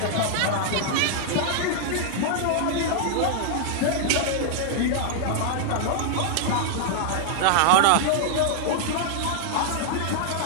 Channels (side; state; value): both; different; correlation -0.01